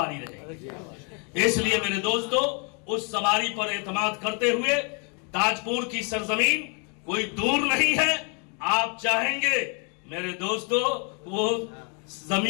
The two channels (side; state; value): right; quieter; 36.9 dB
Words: رہے. اس لیے میرے دوستو، اس سواری پر اعتماد کرتے ہوئے تاج پور کی سرزمین کوئی دور نہیں ہے. آپ چاہیں گے میرے دوستو وہ